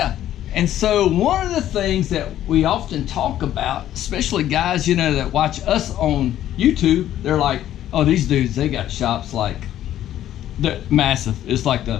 And so one of the things that we often talk about, especially guys, you know, that watch us on YouTube, they're like, oh, these dudes, they got shops like, they're massive. It's like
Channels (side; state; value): right; quieter; 12.1 dB